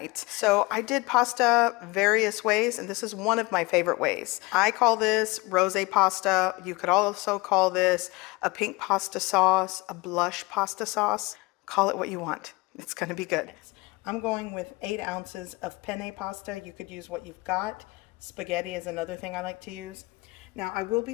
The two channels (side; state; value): right; quieter; 24.2 dB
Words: So I did pasta various ways, and this is one of my favorite ways. I call this rosé pasta. You could also call this a pink pasta sauce, a blush pasta sauce. Call it what you want. It's going to be good. I'm going with 8 ounces of penne pasta. You could use what you've got. Spaghetti is another thing I like to use. Now I will